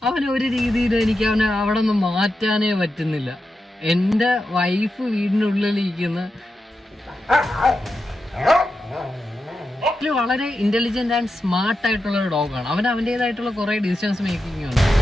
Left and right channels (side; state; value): both; normal; correlation 0.89